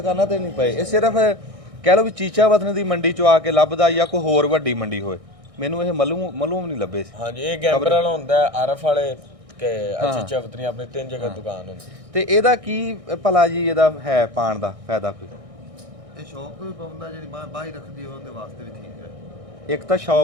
ਤੇ ਨਹੀਂ ਪਏ, ਇਹ ਸਿਰਫ ਕਹਿ ਲਓ ਵੀ ਚੀਚਾ ਵਤਨ ਦੀ ਮੰਡੀ ਚੋਂ ਆ ਕੇ ਲੱਭਦਾ ਜਾਂ ਕੋਈ ਹੋਰ ਵੱਡੀ ਮੰਡੀ ਹੋਏ। ਮੈਨੂੰ ਇਹ ਮਲੂਮ ਨਹੀਂ ਲੱਭੇ ਸੀ। ਹਾਂਜੀ ਇਹ ਗੈਂਬਰ ਵਾਲਾ ਹੁੰਦਾ, ਆਰਫ ਵਾਲੇ ਕਿ ਅੱਛੀ ਚਵਤਰੀ ਆਪਣੀ 3 ਜਗ੍ਹਾ ਦੁਕਾਨ ਹੁੰਦੀ। ਤੇ ਇਹਦਾ ਕੀ ਭਲਾ ਜੀ ਇਹਦਾ ਹੈ ਪਾਣ ਦਾ ਫਾਇਦਾ ਕੋਈ? ਇਹ ਸ਼ੌਕ ਤੋਂ ਵੀ ਪਾਉਂਦਾ, ਜਿਹੜੀ ਬਾਈ ਰੱਖਦੀ ਹੋਵੇ ਉਹਦੇ ਵਾਸਤੇ ਵੀ ਠੀਕ ਹੈ। ਇੱਕ ਤਾਂ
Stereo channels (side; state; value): left; late; 1.6 ms